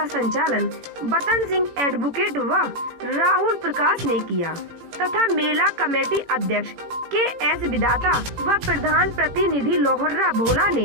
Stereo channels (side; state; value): left; late; 18 ms